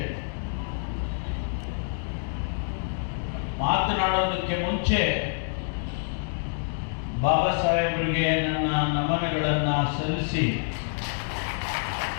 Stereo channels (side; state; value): right; silent; 60 dB below the other